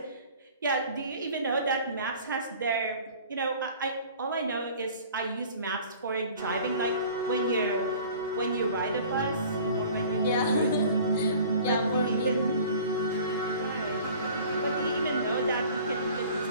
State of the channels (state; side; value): inverted; both; correlation -0.46